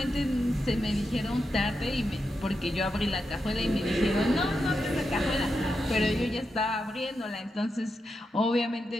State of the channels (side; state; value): both; normal; correlation 0.87